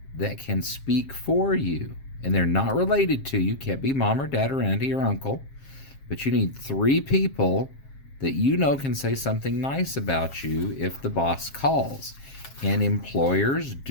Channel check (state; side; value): late; right; 7.4 ms